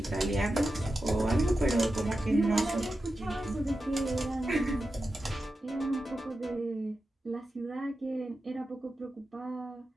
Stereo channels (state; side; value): normal; both; correlation 0.91